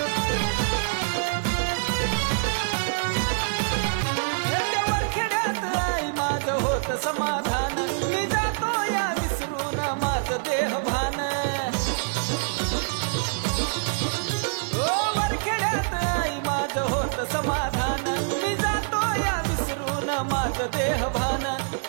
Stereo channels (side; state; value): left; silent; digital silence